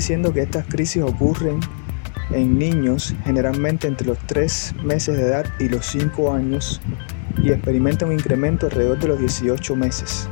que estas crisis ocurren en niños generalmente entre los 3 meses de edad y los 5 años y experimentan un incremento alrededor de los 18 meses.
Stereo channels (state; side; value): silent; right; digital silence